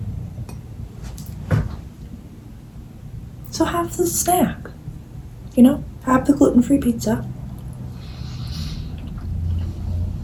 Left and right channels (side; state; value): both; identical; correlation 1.00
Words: So have the snack, you know, have the gluten-free pizza.